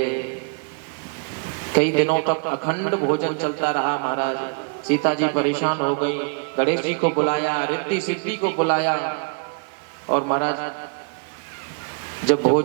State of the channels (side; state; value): left; quieter; 39.3 dB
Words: कई दिनों तक अखंड भोजन चलता रहा महाराज। सीता जी परेशान हो गई, गणेश जी को बुलाया, रिद्धि सिद्धि को बुलाया, और महाराज जब